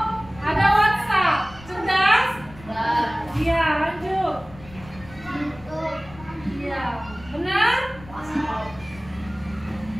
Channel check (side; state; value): left; noise; rumble, 19 dB below the sound